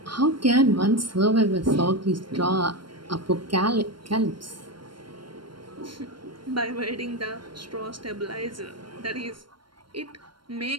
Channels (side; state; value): left; late; 0.72 ms